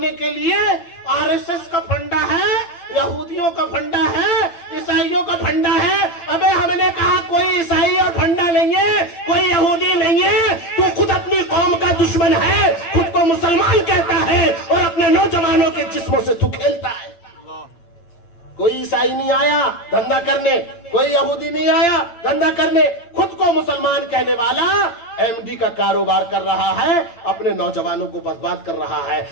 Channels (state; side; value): late; right; 8.8 ms